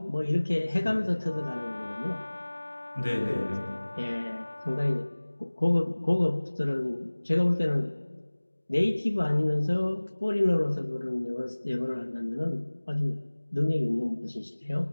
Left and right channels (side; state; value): both; inverted; correlation -1.00